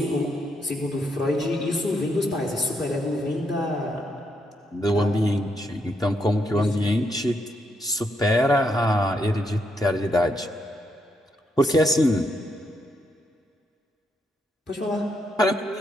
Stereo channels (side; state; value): both; normal; correlation 0.78